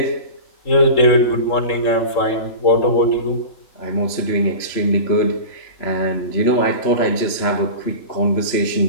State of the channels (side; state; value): right; late; 3.0 ms